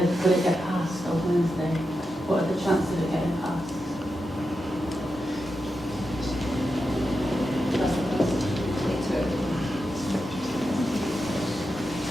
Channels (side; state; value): both; normal; correlation 0.88